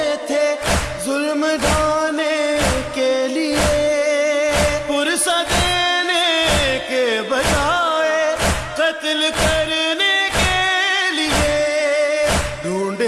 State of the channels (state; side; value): identical; both; correlation 1.00